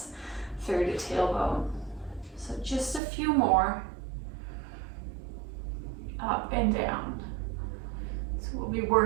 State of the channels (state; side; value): drops out; left; at 3.0 s